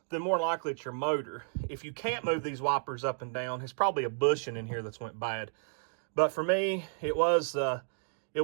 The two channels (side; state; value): left; silent; digital silence